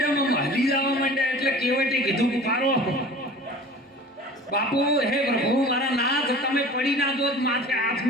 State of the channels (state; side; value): normal; both; correlation 0.41